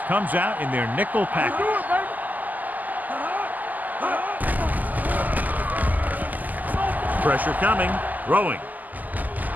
comes out in their nickel Do package. it, baby. Pressure coming, throwing.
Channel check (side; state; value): left; late; 0.081 ms